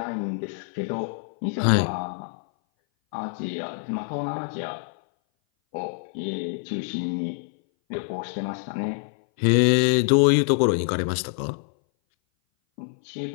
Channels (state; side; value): silent; right; 58 dB below the other